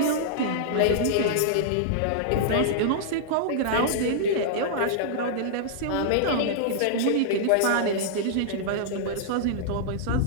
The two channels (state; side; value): different; both; correlation -0.02